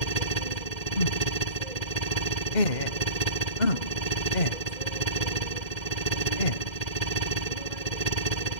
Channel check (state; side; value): late; right; 2.1 ms